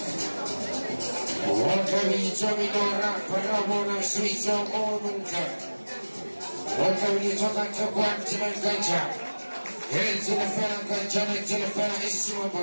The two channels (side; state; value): both; inverted; correlation -1.00